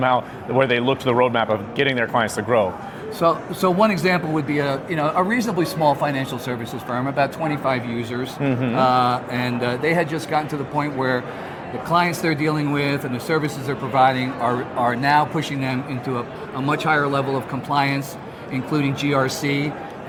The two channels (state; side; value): identical; both; correlation 1.00